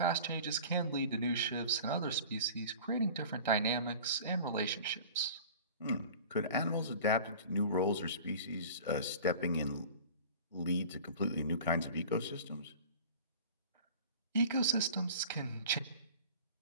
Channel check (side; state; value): both; inverted; correlation -0.41